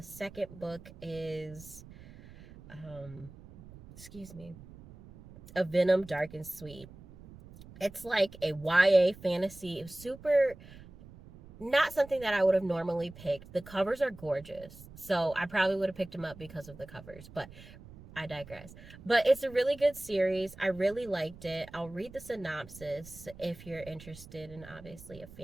second book is, excuse me, A Venom Dark and Sweet. It's like a YA fantasy. It was super, not something that I would have normally picked. The covers are gorgeous, so I probably would have picked them up because of the covers, but I digress. But it's a really good series. I really liked it. I'll read the synopsis if you're interested in, obviously, a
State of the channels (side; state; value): right; noise; rumble, 18 dB below the sound